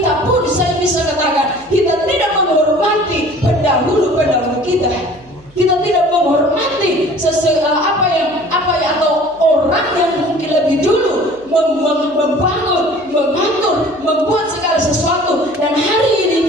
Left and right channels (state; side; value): noise; right; hum, 28 dB below the sound